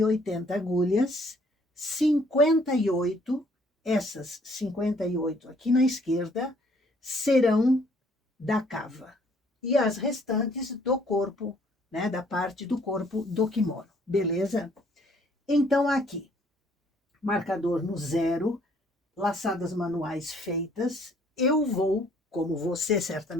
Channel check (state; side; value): normal; both; correlation 0.62